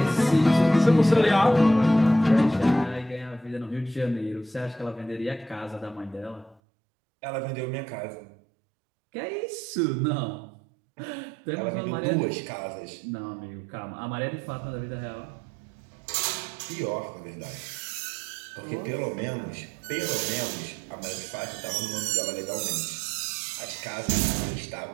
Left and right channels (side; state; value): left; drops out; at 6.6 s